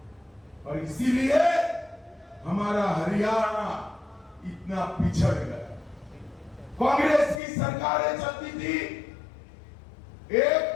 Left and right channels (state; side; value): drops out; right; at 7.4 s